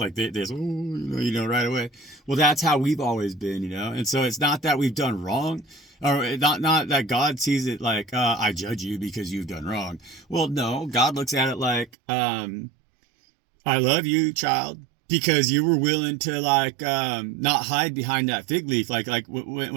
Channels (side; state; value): left; drops out; at 11.9 s